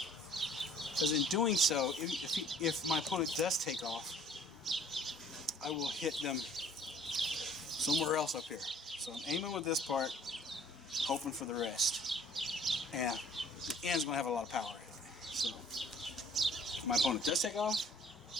because in doing so, if my opponent does take off, I will hit them somewhere else up here. So I'm aiming with this part, hoping for the rest. And the end's going to have a lot of power in it. So if my opponent does take off,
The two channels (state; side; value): normal; both; correlation 0.56